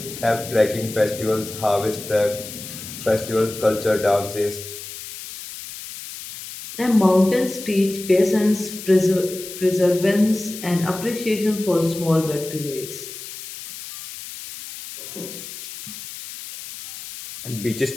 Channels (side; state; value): left; noise; hiss, 12 dB below the sound